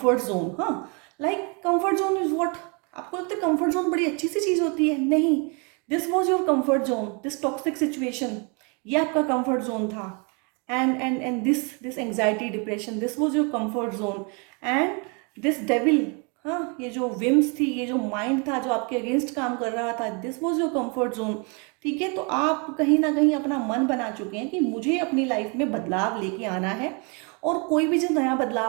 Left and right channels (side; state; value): left; quieter; 33.8 dB